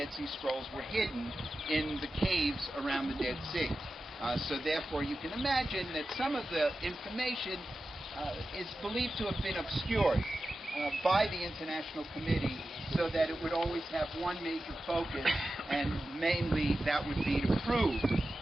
Sea Scrolls were hidden in the caves around the Dead Sea. So therefore, you can imagine that some of the information is believed to have been obscured by the International Committee so that it would always have one major focus, and mainly that would be to prove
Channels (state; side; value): normal; both; correlation 0.93